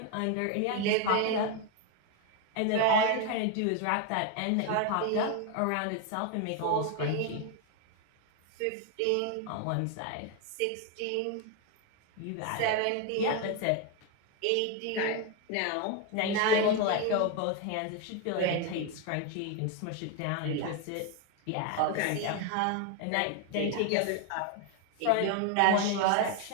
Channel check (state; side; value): different; both; correlation 0.01